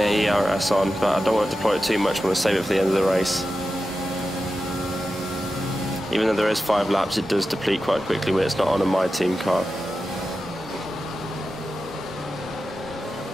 ERS on, but I don't want to deploy it too much, I want to save it for the end of the race. Even though there is 5 laps, it does deplete quite quickly when it's not on a My Team car.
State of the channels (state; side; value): normal; both; correlation 0.92